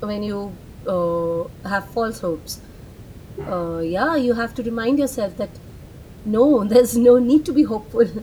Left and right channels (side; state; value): both; identical; correlation 1.00